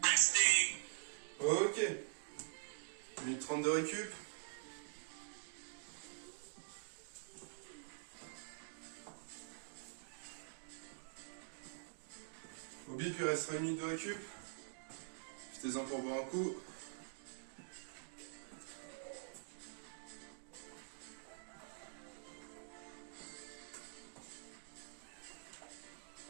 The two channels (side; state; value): left; silent; digital silence